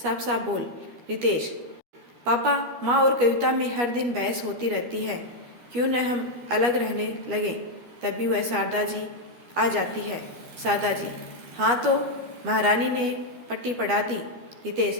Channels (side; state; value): left; late; 13 ms